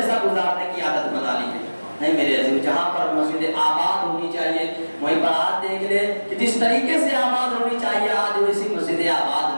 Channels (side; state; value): both; inverted; correlation -1.00